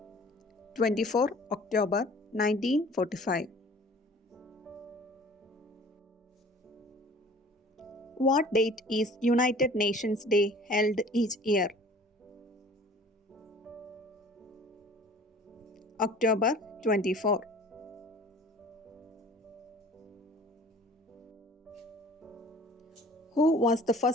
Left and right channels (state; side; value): normal; both; correlation 0.48